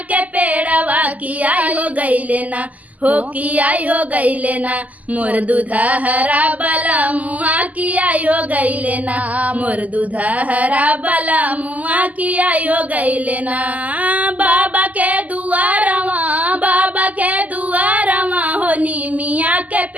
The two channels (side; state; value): left; late; 0.076 ms